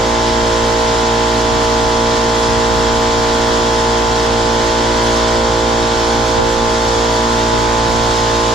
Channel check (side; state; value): both; normal; correlation 0.62